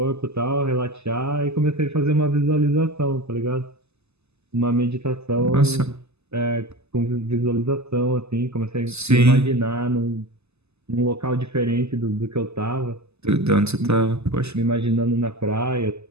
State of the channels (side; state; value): left; late; 0.80 ms